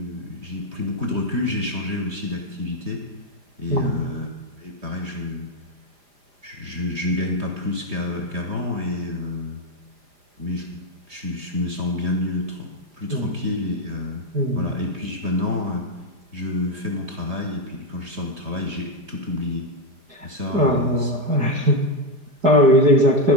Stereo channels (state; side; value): late; left; 4.9 ms